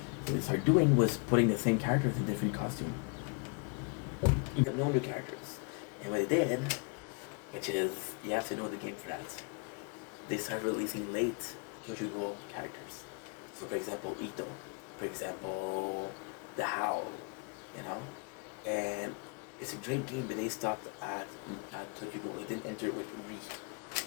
What they started doing was putting the same characters in different costumes, but no new characters. And what they did, which is you have to know the game for that, they started releasing late Tokyo Ghoul characters. So for example, Ito, for example, the Howl, you know, and it's a great game, but they stopped at Tokyo Ghoul. They didn't enter it with Re.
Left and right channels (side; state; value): right; quieter; 37.2 dB